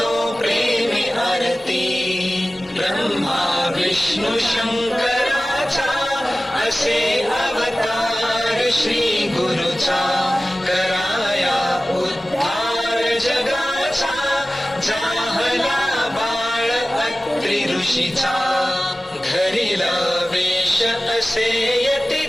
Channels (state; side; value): normal; both; correlation 0.96